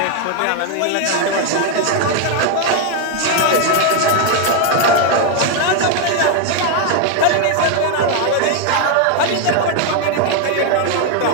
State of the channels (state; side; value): different; both; correlation 0.01